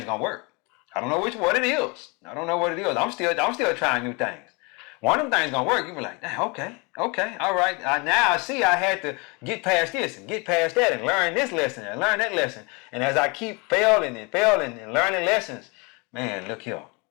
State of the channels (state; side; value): quieter; right; 29.4 dB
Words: gonna work. I don't know what it is. I'm still trying new things. One of them things gonna work. You be like, dang, okay, all right. Now I see I had to get past this and get past that and learn this lesson and learn that lesson. And as I keep failing and learning lessons, man, look here.